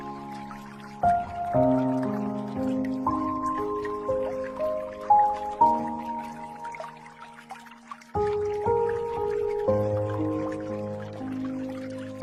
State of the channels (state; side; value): identical; both; correlation 1.00